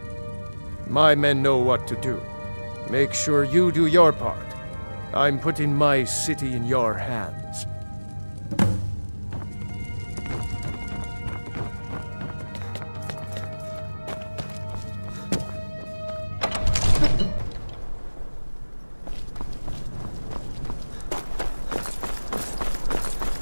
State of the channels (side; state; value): both; inverted; correlation -1.00